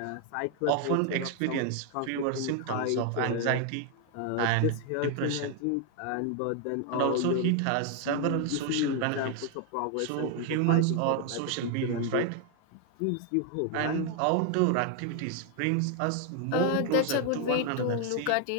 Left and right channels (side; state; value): both; different; correlation 0.00